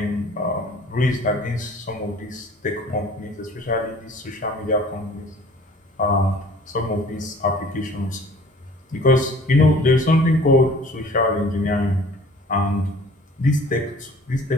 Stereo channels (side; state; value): both; normal; correlation 0.50